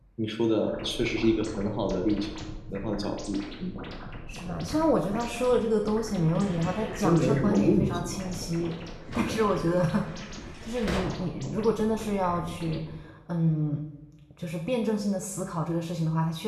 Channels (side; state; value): both; identical; correlation 1.00